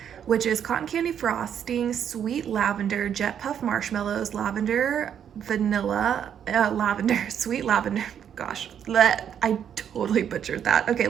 which is cotton candy frosting, sweet lavender, jet puff marshmallows, lavender, vanilla, sweet lavender. Gosh, I totally butchered that. Okay,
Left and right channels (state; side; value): quieter; left; 8.8 dB